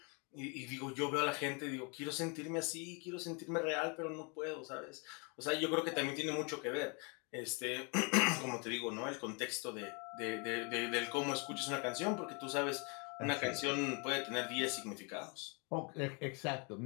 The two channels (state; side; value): quieter; right; 33.8 dB